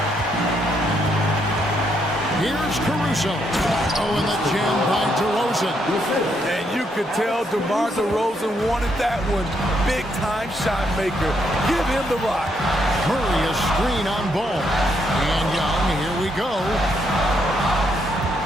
Here's Caruso. Oh, and the jam by DeRozan. And you could tell DeMar DeRozan wanted that one. Big-time shot maker. Give him the rock. Murray a screen on ball. And Young, here we go.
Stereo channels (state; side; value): normal; both; correlation 0.76